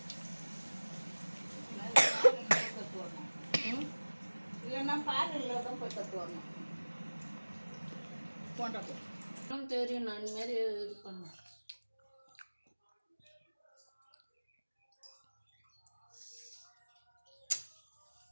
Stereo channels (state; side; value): inverted; both; correlation -1.00